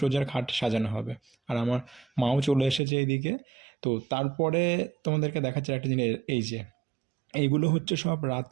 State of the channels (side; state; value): left; drops out; at 2.8 s